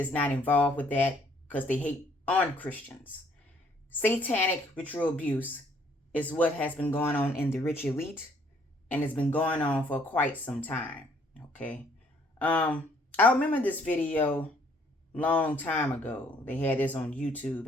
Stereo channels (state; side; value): normal; both; correlation 0.64